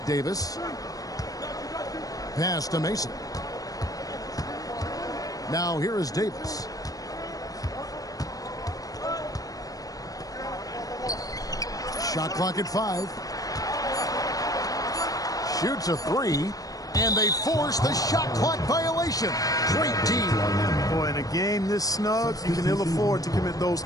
Davis. Pass to Mason. Now here is Davis. Shot clock at 5. Shoots a 3. And they force the shot clock violation. Great team. Boy, in a game this snug, you can ill afford to commit those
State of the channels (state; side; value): late; right; 0.18 ms